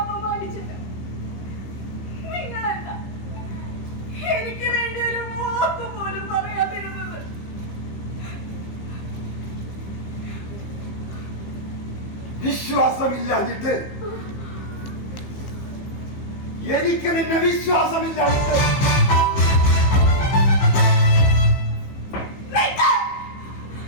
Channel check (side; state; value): right; late; 15 ms